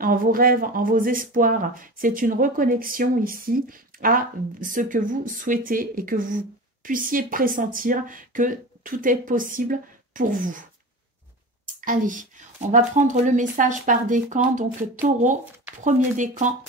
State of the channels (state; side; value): normal; both; correlation 0.31